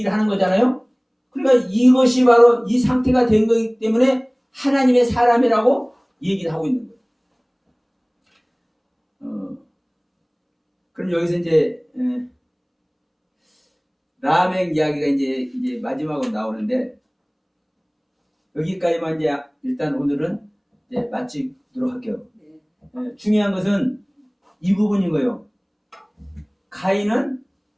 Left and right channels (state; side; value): identical; both; correlation 1.00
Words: 하는 거잖아요. 그러니까 이것이 바로 이 상태가 된 거기 때문에 하나님의 사람이라고 얘기를 하고 있는 거예요. 그럼 여기서 이제 라멕 이야기가 이제 마지막으로 나오는데 여기까지만 이제 일단 오늘은 이제 마치도록 할게요. 중요한 것은 이 부분인 거예요. 가인은